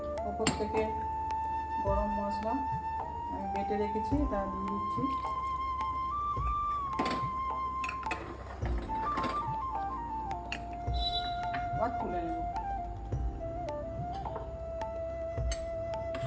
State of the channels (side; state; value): both; identical; correlation 1.00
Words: ওপর থেকে গরম মশলা আমি বেটে রেখেছি, তা দিয়ে দিচ্ছি। আবার তুলে নেব।